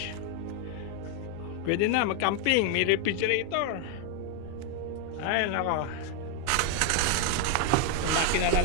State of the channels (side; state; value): both; different; correlation 0.01